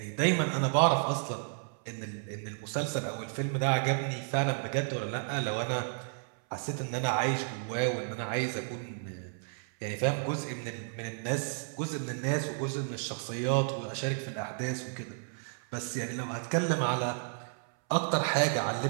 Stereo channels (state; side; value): silent; left; 56 dB below the other